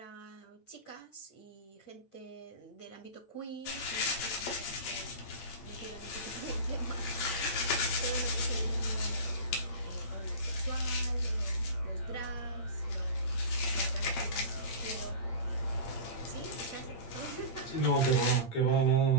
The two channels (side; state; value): right; late; 8.8 ms